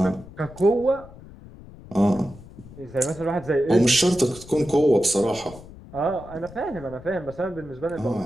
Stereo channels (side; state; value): left; noise; rumble, 18 dB below the sound